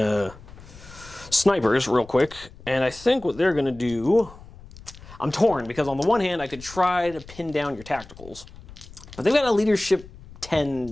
snipers real quick. And I think what they're gonna do, I'm torn, because on the one hand I could try to pin down your tacticals, but they've got a leadership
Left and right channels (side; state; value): left; noise; rumble, 19 dB below the sound